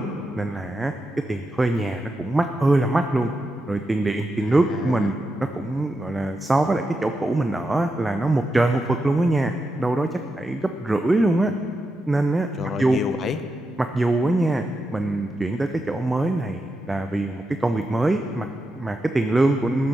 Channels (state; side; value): normal; both; correlation 0.87